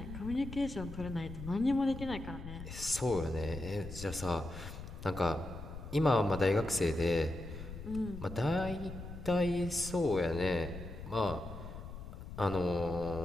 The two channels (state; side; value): noise; left; rumble, 10 dB below the sound